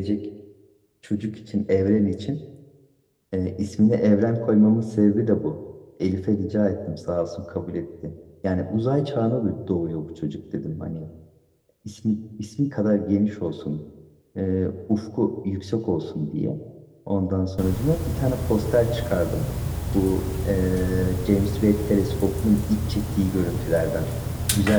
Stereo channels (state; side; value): identical; both; correlation 1.00